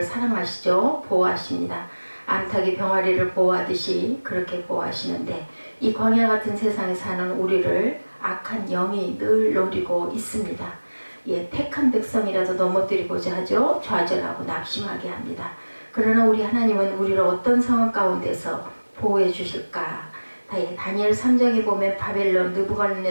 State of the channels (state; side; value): inverted; both; correlation -1.00